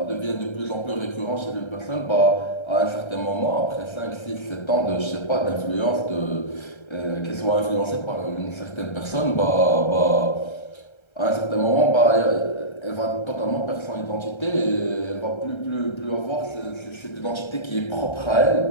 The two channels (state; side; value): late; right; 1.3 ms